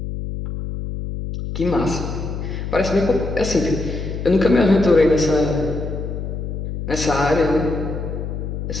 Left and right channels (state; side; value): noise; left; hum, 5 dB below the sound